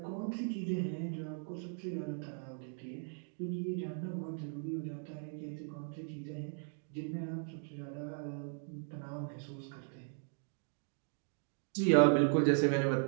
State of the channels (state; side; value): silent; left; 53 dB below the other